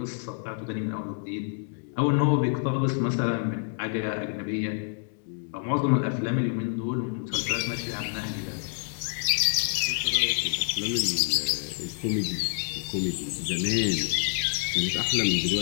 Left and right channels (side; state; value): right; silent; 60 dB below the other